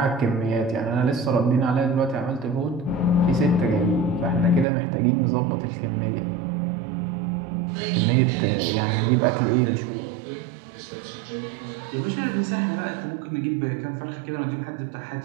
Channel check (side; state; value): left; drops out; at 4.7 s